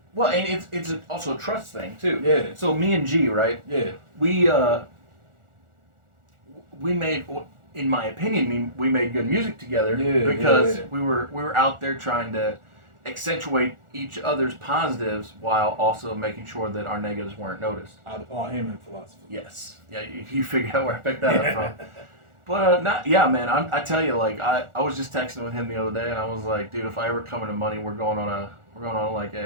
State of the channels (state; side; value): late; left; 1.4 ms